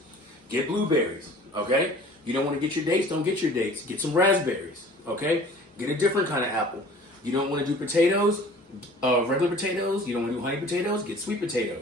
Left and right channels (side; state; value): both; normal; correlation 0.47